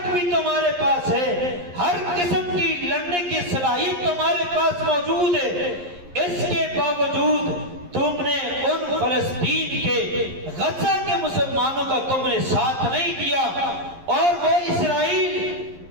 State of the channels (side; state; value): left; late; 11 ms